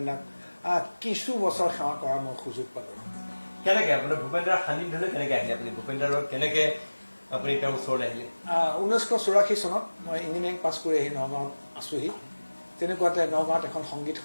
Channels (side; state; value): both; inverted; correlation -1.00